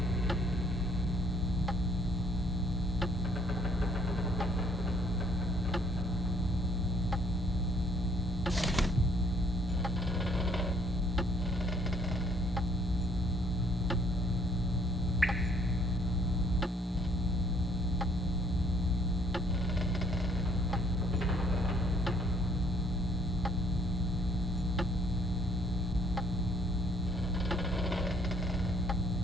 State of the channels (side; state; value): both; normal; correlation 0.62